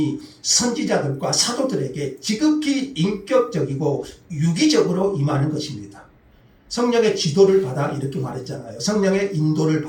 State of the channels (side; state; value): both; identical; correlation 1.00